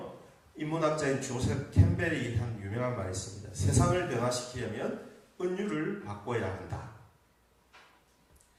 인문학자인 조셉 캠벨이 한 유명한 말이 있습니다. 세상을 변화시키려면 은유를 바꿔야 한다.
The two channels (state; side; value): identical; both; correlation 1.00